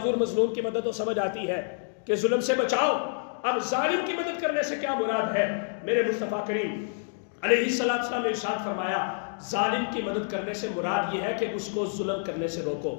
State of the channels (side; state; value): right; silent; digital silence